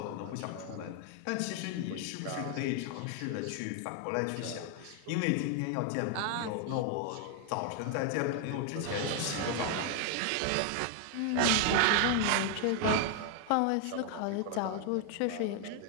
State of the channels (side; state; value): both; different; correlation 0.00